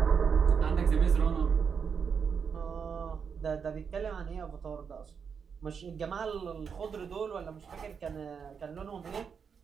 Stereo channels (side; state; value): left; quieter; 6.4 dB